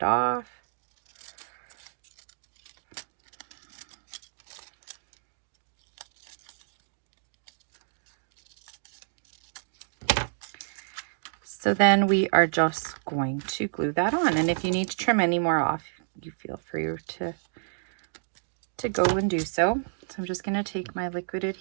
off. So then we are just going to glue that on. And if you need to trim any more off, you feel free to go and do so. So I'm just going to take my liquid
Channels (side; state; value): left; silent; digital silence